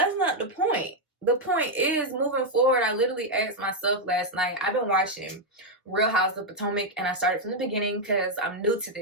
not the point. The point is, moving forward, I literally asked myself last night, I've been watching Real Houses of Potomac, and I started from the beginning because I'm new to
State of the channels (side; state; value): both; normal; correlation 0.00